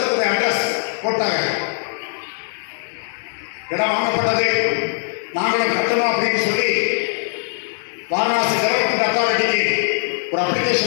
அட்ரஸ் போட்டாங்க. இடம் வாங்கப்பட்டது. நாங்களும் கட்டணும் அப்படின்னு சொல்லி வாரணாசி டெவலப்மெண்ட் அத்தாரிட்டிக்கு ஒரு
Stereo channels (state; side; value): silent; right; digital silence